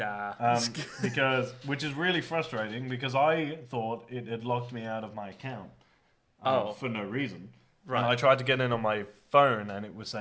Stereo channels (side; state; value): both; identical; correlation 1.00